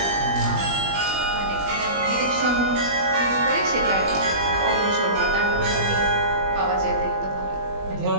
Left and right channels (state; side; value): late; left; 20 ms